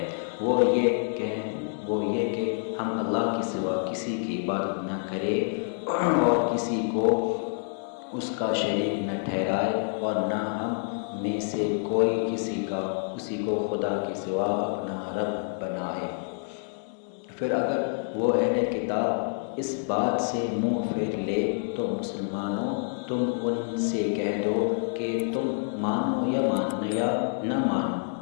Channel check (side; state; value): right; silent; 60 dB below the other